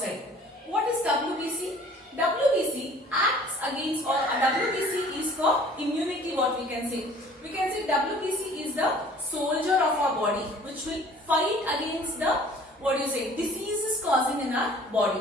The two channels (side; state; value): both; normal; correlation 0.51